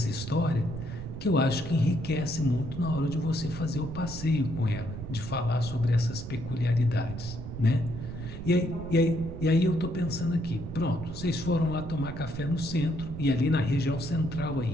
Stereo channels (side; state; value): right; noise; rumble, 9 dB below the sound